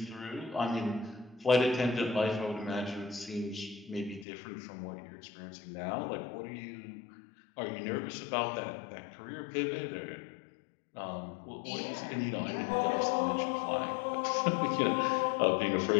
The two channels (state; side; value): drops out; right; at 4.2 s